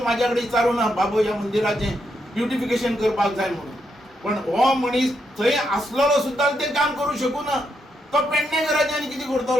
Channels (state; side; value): normal; both; correlation 0.80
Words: म्हाज्या कडेन विचारूं ना बाबू ह्या मंदिराचें ब्युटिफिकेशन करपाक जाय म्हणून. पण हो मनीस थंय आसलेलो सुद्दां तें काम करूं शकूं ना. तो पेडणेकाराचें आनी कितें